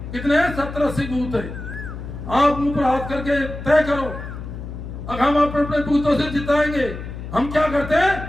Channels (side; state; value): left; noise; hum, 9 dB below the sound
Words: कितने हैं? 70-80 बूथ है। आप मुंह पर हाथ करके तय करो, अब हम अपने बूथों से जिताएंगे। हम क्या करते